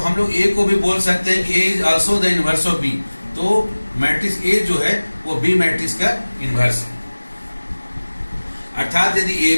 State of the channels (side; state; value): both; inverted; correlation -1.00